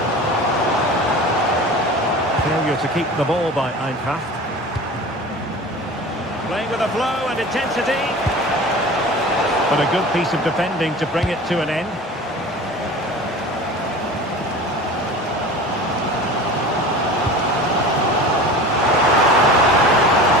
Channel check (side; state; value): both; normal; correlation 0.37